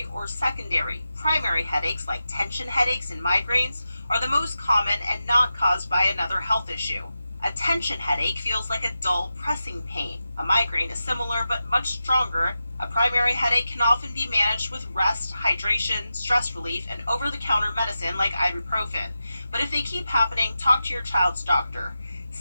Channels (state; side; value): inverted; both; correlation -0.91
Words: or secondary. Primary headaches, like tension headaches and migraines, are the most common and not caused by another health issue. A tension headache feels like a dull, pressing pain. A migraine is similar but much stronger. A primary headache can often be managed with rest, hydration, stress relief, and over-the-counter medicine like ibuprofen. But if they keep happening, talk to your child's doctor.